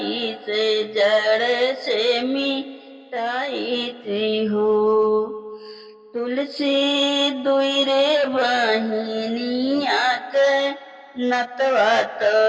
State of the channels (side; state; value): both; identical; correlation 1.00